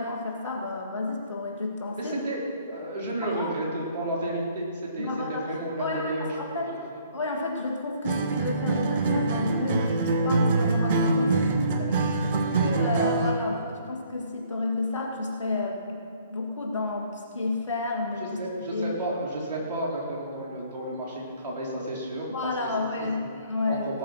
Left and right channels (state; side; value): inverted; both; correlation -0.61